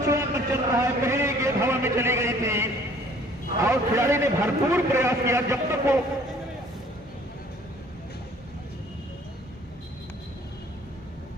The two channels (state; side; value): normal; both; correlation 0.55